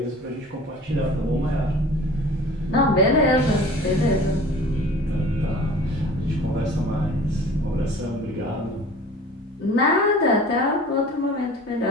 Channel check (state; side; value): normal; both; correlation 0.44